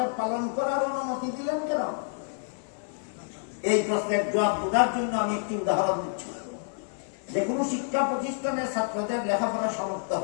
পালন করার অনুমতি দিলেন কেন? এই প্রশ্নের জবাব বোঝার জন্য আমি একটি উদাহরণ দিচ্ছি। যে কোনো শিক্ষা প্রতিষ্ঠানের ছাত্রদের লেখাপড়া সমাপ্ত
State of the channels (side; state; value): right; silent; 59 dB below the other